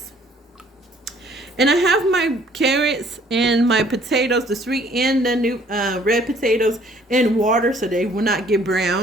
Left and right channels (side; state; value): both; normal; correlation 0.59